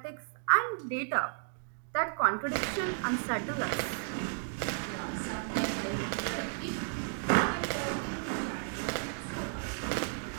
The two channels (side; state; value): left; silent; digital silence